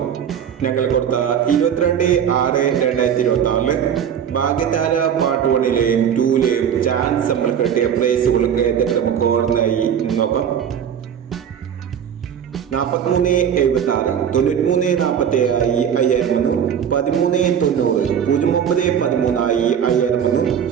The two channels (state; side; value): quieter; left; 8.5 dB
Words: ഞങ്ങൾ കൊടുത്ത 22/6/2026 ഭാഗ്യതാര പാർട്ട് 1ലെയും 2ലെയും ചാൻസ് നമ്മൾ കിട്ടിയ പ്രൈസുകൾക്ക് ഏതൊക്കെ നമുക്ക് ഓർമ്മയായി നോക്കാം. 43.76 93.47 5000 13.90 09.13 5000